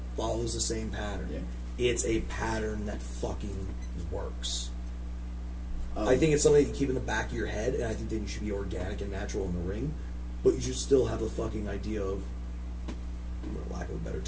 follows the same pattern. Yeah. It's a pattern that fucking works. I think it's something that you keep in the back of your head, and I think that you should be organic and natural in the ring, but you should still have the fucking idea of, for lack of a better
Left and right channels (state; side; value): identical; both; correlation 1.00